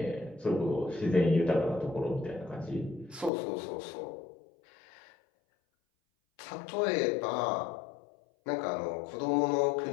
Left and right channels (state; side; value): drops out; right; at 3.3 s